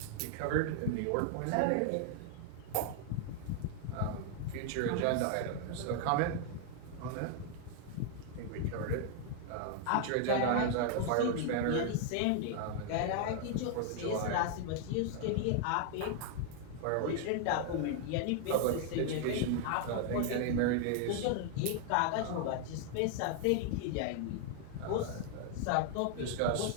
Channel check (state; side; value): different; both; correlation 0.00